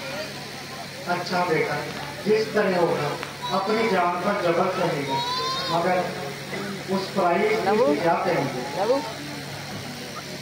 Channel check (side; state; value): both; identical; correlation 1.00